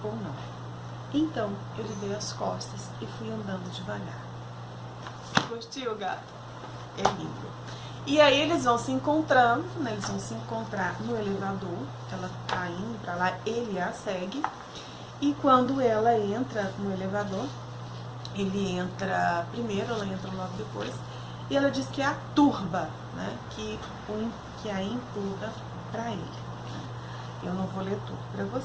ou não. Então, eu lhe dei as costas e fui andando devagar. Gostou, gato? É lindo. E aí eles vão se encontrando, né? Eles vão se encontrar no elevador. Ela tá indo pra lá, ele a segue. E quando ela entra no elevador, ele entra primeiro, ela entra logo depois. E ela diz que é a turba, né? Que a empurra pra ele. Eu não vou ler tudo pra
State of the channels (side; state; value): both; identical; correlation 1.00